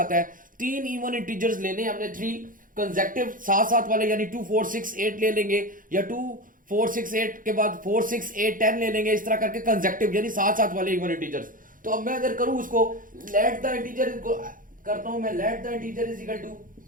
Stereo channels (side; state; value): left; late; 0.40 ms